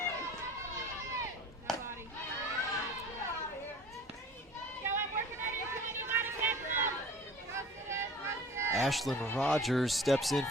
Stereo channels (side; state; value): both; normal; correlation 0.43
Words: Ashlyn Rogers steps in